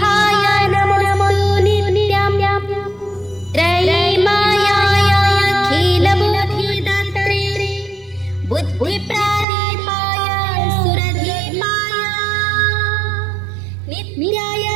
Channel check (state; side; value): drops out; left; at 9.5 s